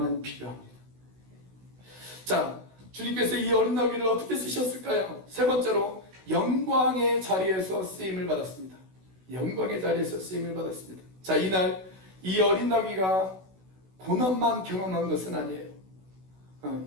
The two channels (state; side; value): late; left; 16 ms